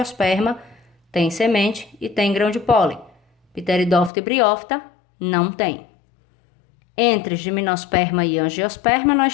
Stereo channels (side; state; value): right; drops out; at 4.1 s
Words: tem semente e tem grão de pólen. Pteridófita e briófita não tem. Entre gimnosperma e angiosperma,